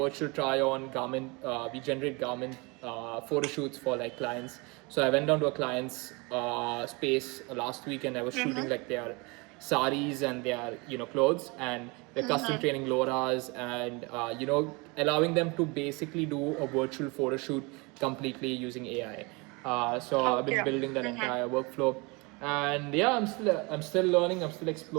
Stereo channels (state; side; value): quieter; left; 27.7 dB